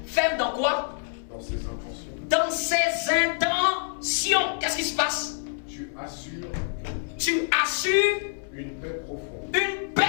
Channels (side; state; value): right; silent; 60 dB below the other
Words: Ferme dans quoi? Dans ses intentions. Dans ses intentions. Qu'est-ce qui se passe? Tu assures une paix profonde. Une